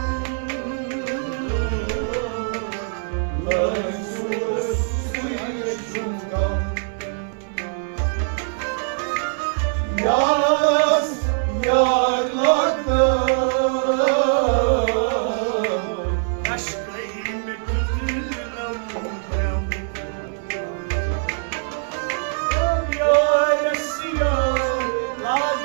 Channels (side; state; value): left; silent; 64 dB below the other